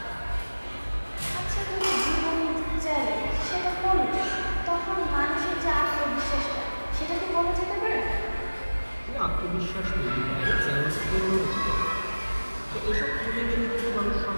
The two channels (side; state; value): both; inverted; correlation -1.00